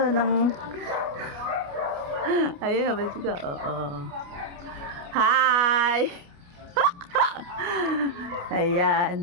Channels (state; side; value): late; left; 29 ms